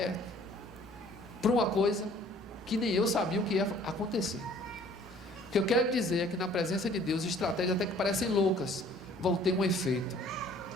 para uma coisa que nem eu sabia o que ia acontecer. O que eu quero dizer é que na presença de Deus, estratégias até que parecem loucas, vão ter um efeito,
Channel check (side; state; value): both; normal; correlation 0.55